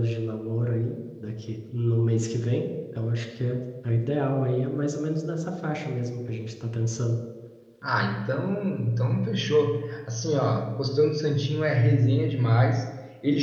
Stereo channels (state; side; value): identical; both; correlation 1.00